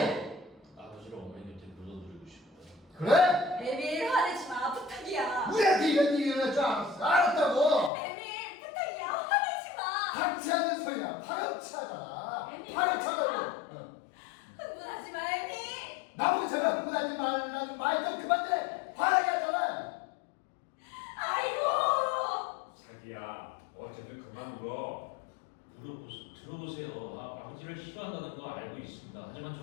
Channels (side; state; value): right; drops out; at 7.9 s